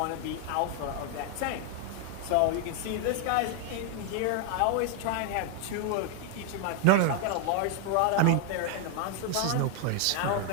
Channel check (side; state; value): both; different; correlation 0.00